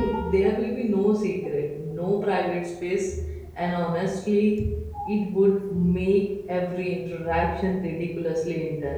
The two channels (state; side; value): identical; both; correlation 1.00